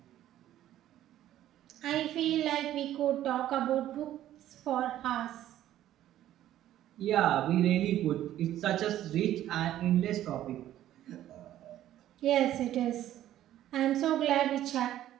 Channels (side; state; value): left; quieter; 12.7 dB